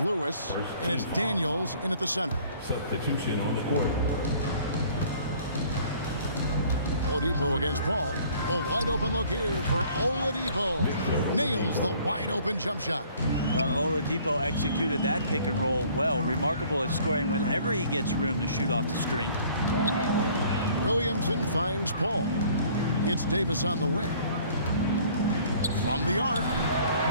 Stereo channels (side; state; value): both; inverted; correlation -0.55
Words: Lewis. And it's Daniels in at the center. Substitution on the court. Oladipo against Paul. A wide open look here for Oladipo. Nails the wide open jump shot. Oladipo executed that pick and roll well. Remarkable at scoring whenever he gets room to shoot off the screen. Williamson finds Paul. It's Davis on the wing. From the arc.